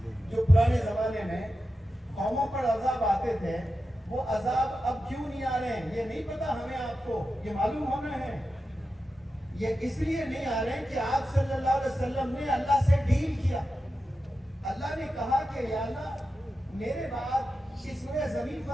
जो पुराने जमाने में कौमों पर अजाब आते थे, वो अजाब अब क्यों नहीं आ रहे हैं ये नहीं पता हमें, आपको ये मालूम होना है। ये इसलिए नहीं आ रहे हैं कि आप सल्लल्लाहु अलैहि वसल्लम ने अल्लाह से डील किया। अल्लाह ने कहा कि या अल्लाह मेरे बाद इस जमीन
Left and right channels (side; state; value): both; normal; correlation 0.91